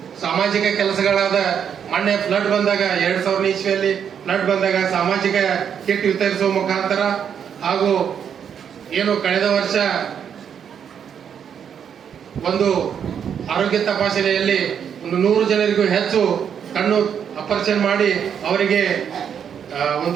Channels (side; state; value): left; quieter; 8.0 dB